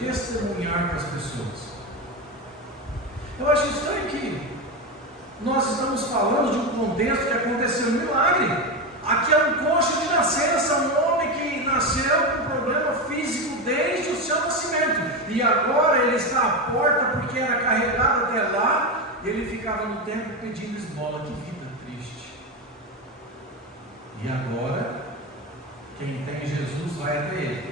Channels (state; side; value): normal; both; correlation 0.16